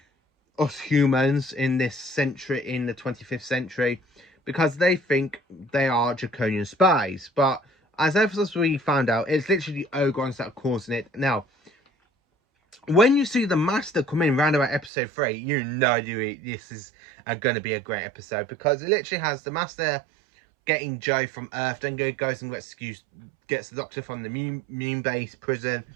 us humans in this century, in the 25th century, because they think they are Draconian spies. But as we found out, it's literally the Ogrons that are causing it. Now, when you see the Master come in round about episode 3, you know this is going to be a great episode, because it literally has the Master getting Joe from Earth, then goes and gets the Doctor from the moon base prison,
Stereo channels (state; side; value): drops out; left; at 14.9 s